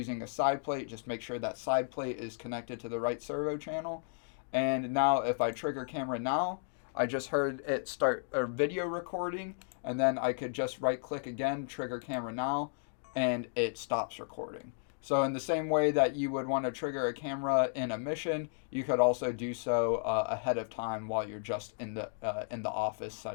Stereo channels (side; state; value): right; silent; digital silence